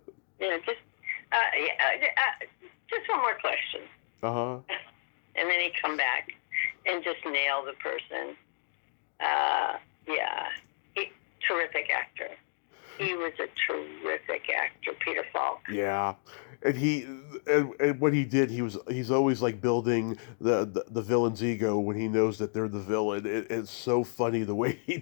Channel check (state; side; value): silent; right; 57 dB below the other